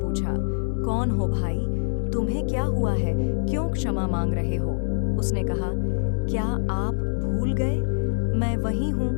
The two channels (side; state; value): right; silent; digital silence